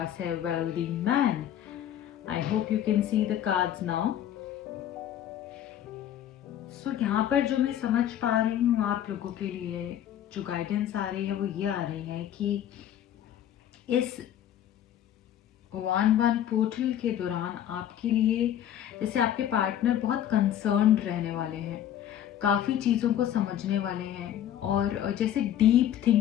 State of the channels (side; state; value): right; quieter; 10.8 dB